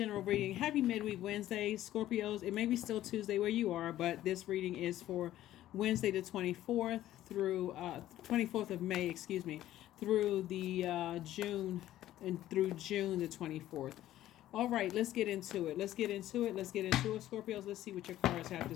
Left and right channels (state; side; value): quieter; right; 13.6 dB